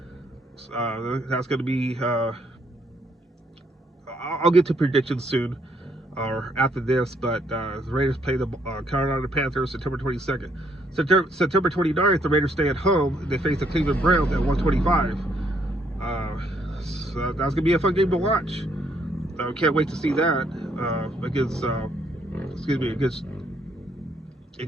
That's going to be, I'll get to predictions soon or after this, but the Raiders play the Carolina Panthers September 22nd. September 29th, the Raiders stay at home and they face the Cleveland Browns at 1:25. So that's going to be a fun game to watch. Can't wait to see that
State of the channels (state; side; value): normal; both; correlation 0.71